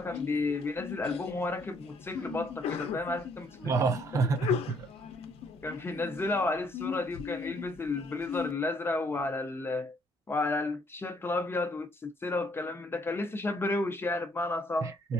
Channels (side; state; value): both; normal; correlation 0.67